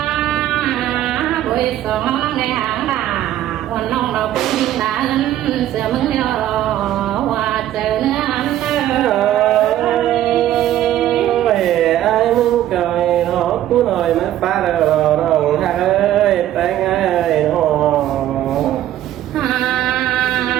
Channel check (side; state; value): left; quieter; 12.7 dB